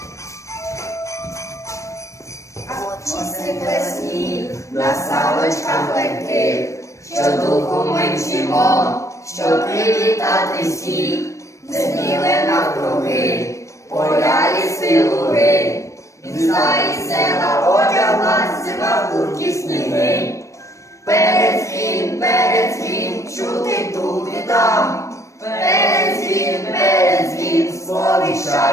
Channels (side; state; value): right; late; 0.15 ms